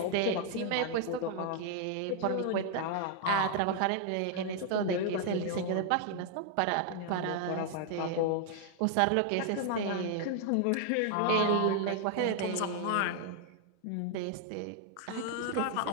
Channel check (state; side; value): different; both; correlation 0.00